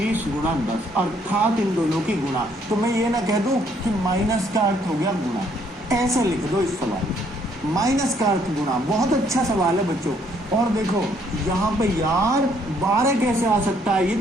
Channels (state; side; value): normal; both; correlation 0.67